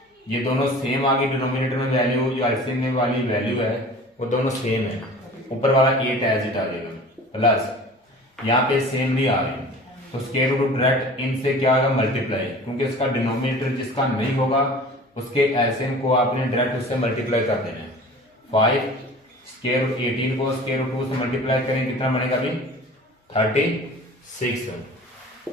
ये दोनों सेम आ गई, डिनोमिनेटर में वैल्यू जो एलसीएम में वाली वैल्यू है वो दोनों सेम है, ऊपर वाला 8 एज इट आ जाएगा, प्लस यहाँ पे सेम नहीं आ रही तो स्क्वायर रूट डायरेक्ट इनसे क्या आएगा, मल्टीप्लाई, क्योंकि इसका डिनोमिनेटर जिसका नहीं होगा उसके एलसीएम को आपने डायरेक्ट उससे मल्टीप्लाई कर देना है। 5 स्क्वायर रूट 18 को स्क्वायर रूट 2 से मल्टीप्लाई करें, कितना बनेगा अभी 36,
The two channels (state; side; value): normal; both; correlation 0.42